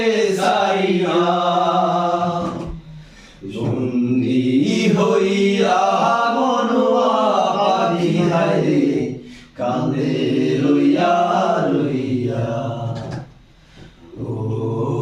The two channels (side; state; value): both; identical; correlation 1.00